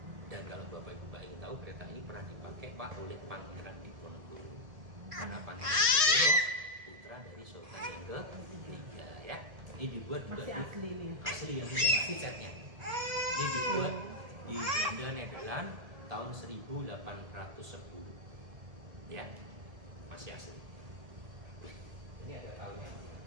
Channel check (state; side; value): late; left; 1.7 ms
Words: Dan kalau bapak ibu mbak ingin tahu kereta ini pernah dipakai pak oleh Pangeran Diponegoro. Karena Pangeran Diponegoro putra dari Sultan yang ketiga ya. Ini dibuat juga Masih asli nih. asli yang tidak asli catnya. Ini dibuat di Belanda Nederland tahun 1810 ya, masih asli. Ini ada tahunnya